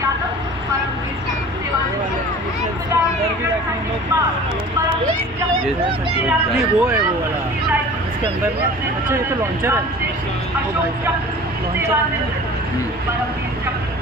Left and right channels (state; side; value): normal; both; correlation 0.42